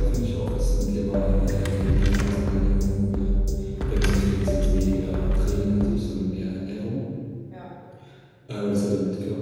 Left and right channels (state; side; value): identical; both; correlation 1.00